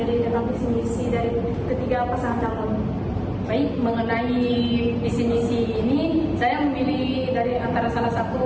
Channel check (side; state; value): both; identical; correlation 1.00